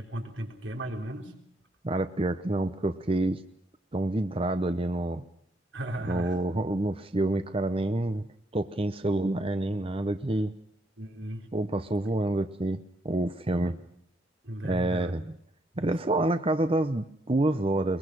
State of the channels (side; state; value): both; normal; correlation 0.73